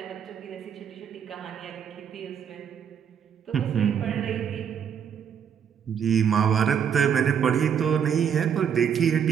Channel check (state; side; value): quieter; left; 8.0 dB